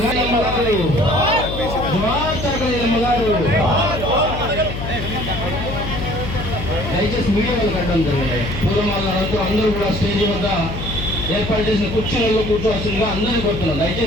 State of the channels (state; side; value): noise; left; hum, 6 dB below the sound